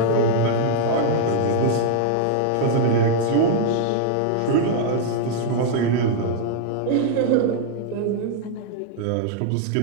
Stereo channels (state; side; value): different; both; correlation -0.01